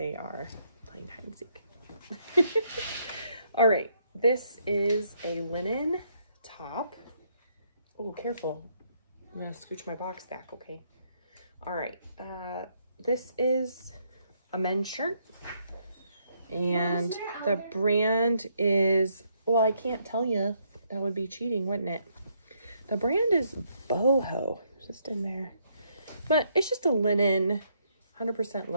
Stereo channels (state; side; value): inverted; both; correlation -0.73